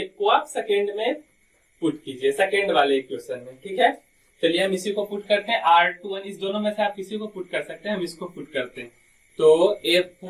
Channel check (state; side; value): identical; both; correlation 1.00